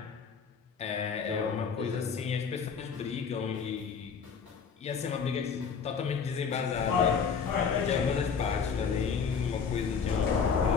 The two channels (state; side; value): quieter; right; 6.2 dB